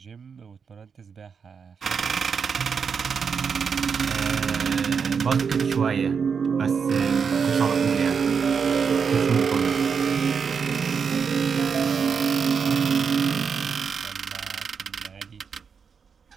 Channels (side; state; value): left; quieter; 6.1 dB